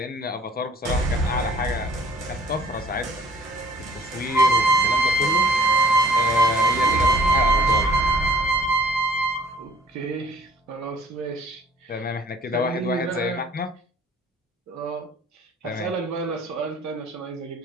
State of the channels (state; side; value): normal; both; correlation 0.55